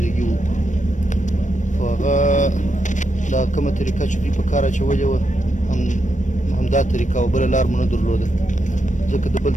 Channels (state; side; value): late; right; 0.36 ms